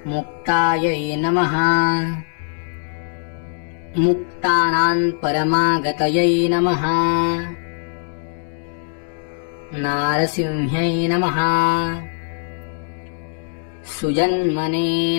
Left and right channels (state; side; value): silent; right; digital silence